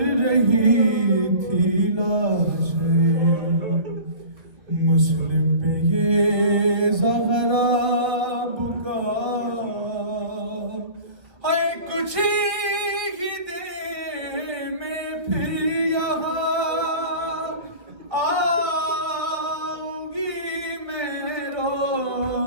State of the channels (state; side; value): late; left; 1.9 ms